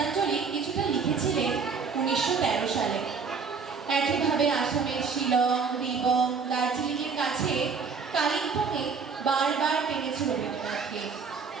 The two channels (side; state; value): left; quieter; 5.4 dB